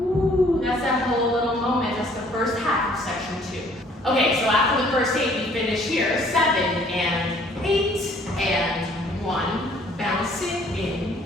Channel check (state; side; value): normal; both; correlation 0.59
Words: that's that whole little moment. That's the first half of section 2. Okay, so after the first 8, we finish here. 7 and 8 and 1. Bounce